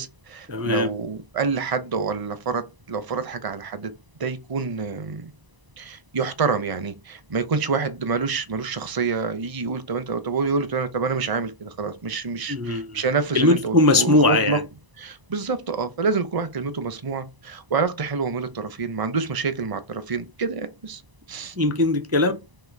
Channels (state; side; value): late; left; 1.0 ms